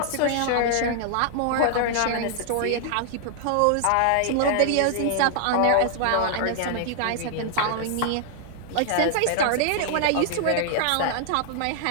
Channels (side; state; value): both; different; correlation -0.01